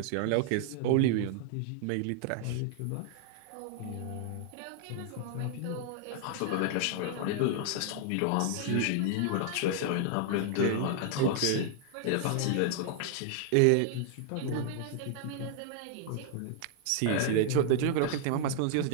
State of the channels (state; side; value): different; both; correlation 0.00